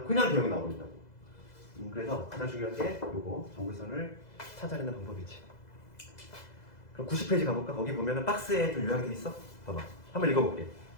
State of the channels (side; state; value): right; late; 2.0 ms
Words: 개형이 나오는다고. 그래서 가장 중요한 게 요거 정근선을 찾아내는 방법이지. 그럼 90페이지 가볼까? 거기 보면은 박스에 좀 요약이 돼 있어. 봐봐. 한번 읽어볼게.